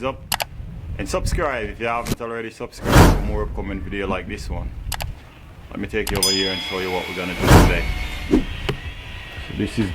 up and subscribe if you haven't already subscribed for more upcoming video like this one. Let me take you over here and show you what we're gonna do today. So this is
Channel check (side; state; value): both; identical; correlation 1.00